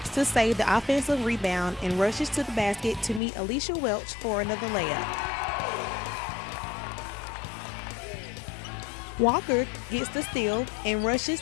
to save the offensive rebound and rushes to the basket to meet Alicia Welch for another layup. Walker gets the steal and rushes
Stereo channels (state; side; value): drops out; right; at 3.2 s